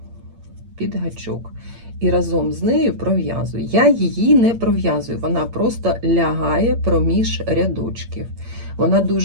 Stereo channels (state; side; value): late; left; 8.7 ms